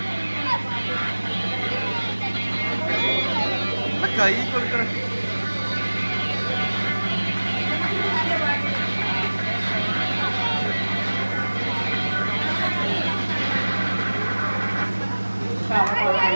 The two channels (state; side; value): inverted; both; correlation -1.00